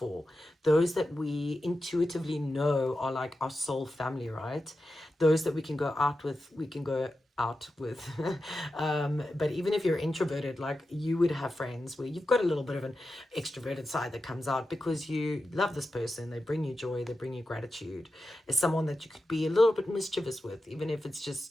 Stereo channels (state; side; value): normal; both; correlation 0.91